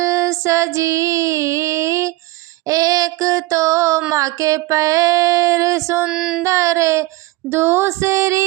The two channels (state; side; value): quieter; left; 20.2 dB